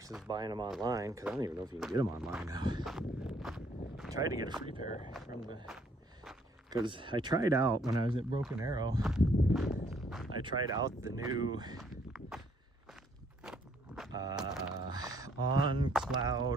buying them online, because I don't even know if you can get them online now. I tried to get a free pair from because I tried out when I was at Broken Arrow. I tried out the new On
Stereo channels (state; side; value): normal; both; correlation 0.66